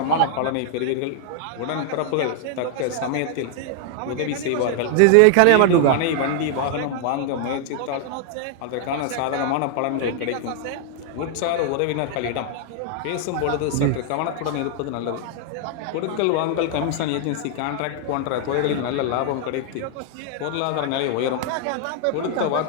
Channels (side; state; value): both; different; correlation 0.00